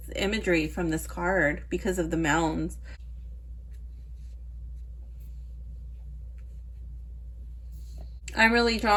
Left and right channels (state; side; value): identical; both; correlation 1.00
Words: imagery from this card because of the mounds. I'm really